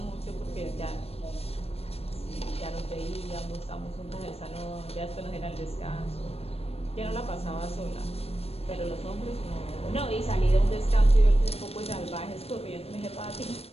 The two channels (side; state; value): right; late; 0.29 ms